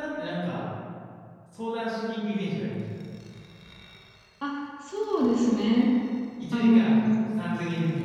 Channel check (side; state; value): both; identical; correlation 1.00